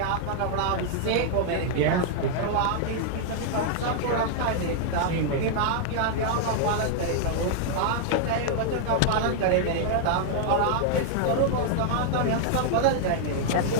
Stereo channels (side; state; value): both; different; correlation -0.01